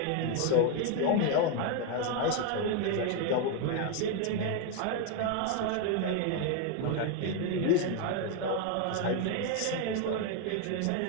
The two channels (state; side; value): different; both; correlation 0.01